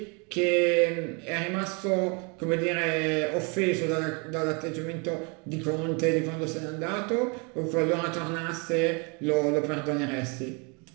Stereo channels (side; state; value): left; quieter; 32.6 dB